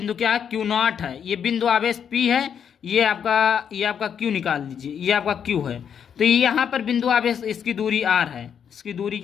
क्या है, Q0 है। ये बिंदु आवेश P है, ये आपका Q निकाल दीजिए, ये आपका Q है। तो यहाँ पर बिंदु आवेश, इसकी दूरी R है, इसकी दूरी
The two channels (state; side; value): quieter; right; 7.9 dB